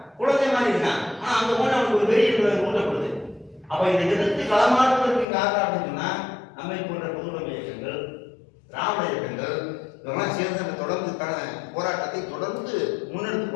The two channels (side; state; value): right; drops out; at 5.2 s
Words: குழந்தை மாதிரி இருக்கான். ஆனா அந்த போன அவனுக்கு ஒரு வெறி ஊட்டப்படுது. அப்ப இதை எதிர்த்து களமாடுவதற்கு காரணம் அப்படின்னு சொன்னா, நம்மை போன்ற பொதுவுடைமை இயக்கங்கள், திராவிட இயக்கங்கள் இதெல்லாம் சேர்ந்து அந்த தொடர்ந்துக்கான போராட்டத்தை தொடர்ந்து முன்னெடுத்து